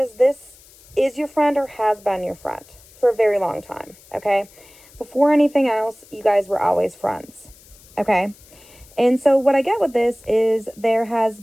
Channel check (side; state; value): left; noise; hiss, 25 dB below the sound